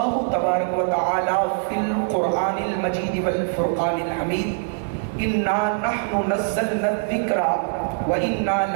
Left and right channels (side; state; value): left; silent; 64 dB below the other